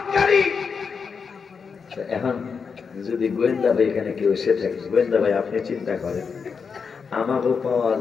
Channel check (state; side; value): quieter; right; 5.7 dB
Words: এখন যদি গোয়েন্দা ভাই এখানে কেউ এসে থাকে, গোয়েন্দা ভাই আপনি চিন্তা করেন, আমাকেও পাওয়া